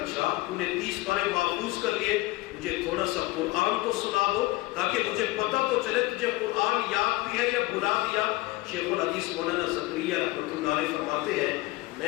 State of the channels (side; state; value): right; quieter; 20.0 dB